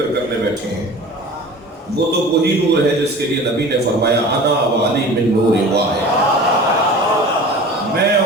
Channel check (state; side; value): normal; both; correlation 0.40